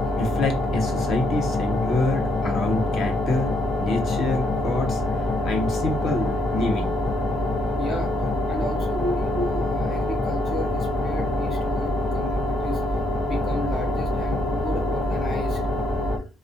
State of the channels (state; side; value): normal; both; correlation 0.74